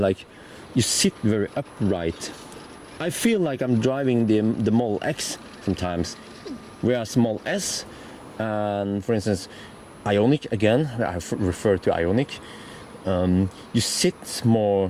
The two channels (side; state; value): both; identical; correlation 1.00